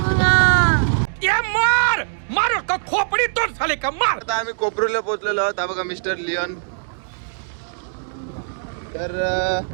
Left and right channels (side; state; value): left; silent; digital silence